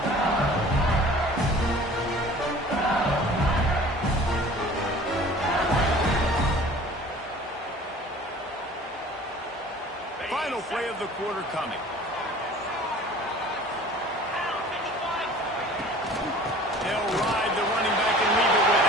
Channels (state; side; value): normal; both; correlation 0.46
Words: Final play of the quarter coming. They'll ride the running back and leave it with